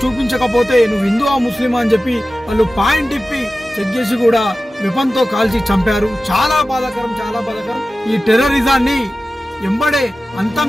చూపించకపోతే నువ్వు హిందువా ముస్లిమా అని చెప్పి వాళ్ళు పాయింట్ ఇప్పి చెక్ చేసి కూడా వెపన్ తో కాల్చి చంపారు. చాలా బాధాకరం, చాలా బాధాకరం. ఈ టెర్రరిజాన్ని ఎంబడే అంతం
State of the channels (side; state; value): both; normal; correlation 0.95